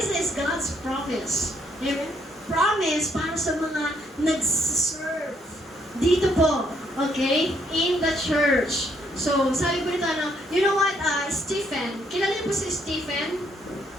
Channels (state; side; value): normal; both; correlation 0.70